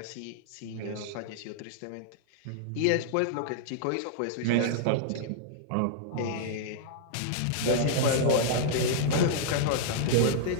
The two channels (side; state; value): both; different; correlation -0.01